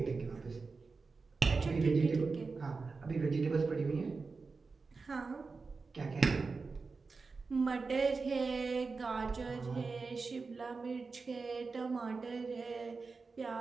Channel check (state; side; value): quieter; left; 4.3 dB